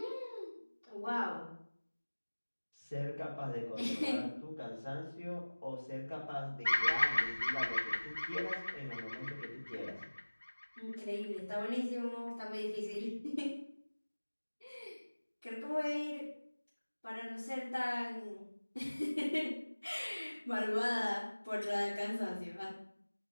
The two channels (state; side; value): inverted; both; correlation -1.00